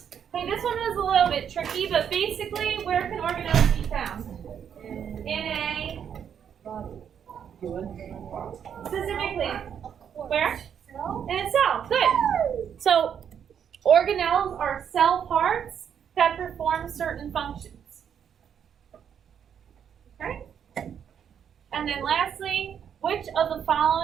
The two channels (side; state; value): left; quieter; 8.3 dB